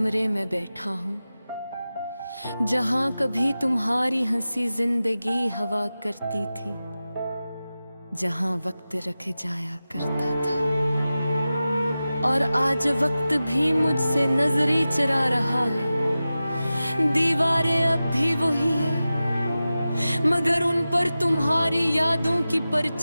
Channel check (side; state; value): both; inverted; correlation -0.95